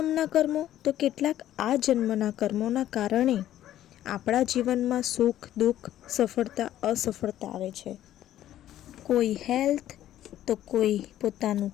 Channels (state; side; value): quieter; right; 12.5 dB